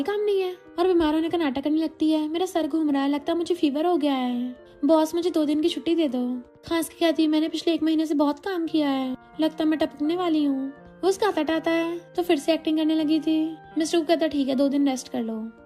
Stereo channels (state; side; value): identical; both; correlation 1.00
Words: काम नहीं है, और बीमार होने का नाटक करने लगती है। मेरा सर घूम रहा है, लगता है मुझे फीवर हो गया है, बॉस मुझे 2 दिन की छुट्टी दे दो। खांस की कहती है मैंने पिछले 1 महीने से बहुत काम किया है, लगता है मैं टपकने वाली हूँ। वो उसका हाथ हटाता है तो फिर से एक्टिंग करने लगी थी। मिस्टर को कहता ठीक है 2 दिन रेस्ट कर लो।